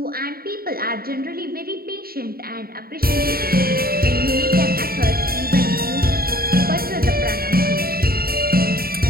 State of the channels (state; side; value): late; left; 0.44 ms